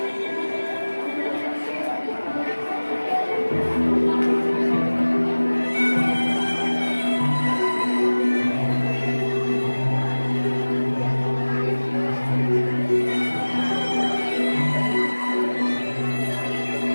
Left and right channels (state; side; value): inverted; both; correlation -1.00